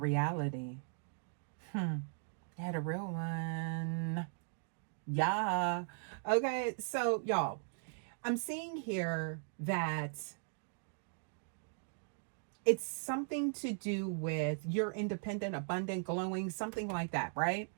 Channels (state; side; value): silent; left; digital silence